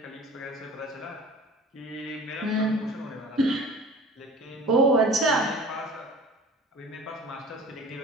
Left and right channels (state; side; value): normal; both; correlation 0.42